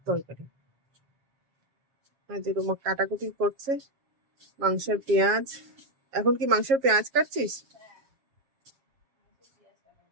তরকারি। যে রুমা কাটাকুটি করছে মাংসের পেঁয়াজ। এখন কি মাংসের পেঁয়াজ কাটছিস?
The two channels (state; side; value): late; left; 7.3 ms